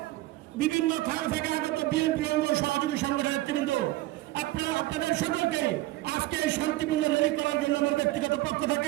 বিভিন্ন থানা থেকে আগত বিএনপি অঙ্গ সহযোগী সংগঠনের নেতৃবৃন্দ, আপনাদের সকলকে আজকে শান্তিপূর্ণ র্যালি করার জন্য আমার ব্যক্তিগত পক্ষ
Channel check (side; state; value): left; quieter; 17.7 dB